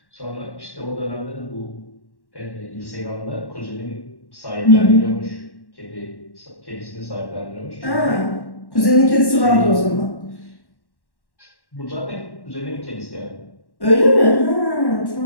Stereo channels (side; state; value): right; late; 1.1 ms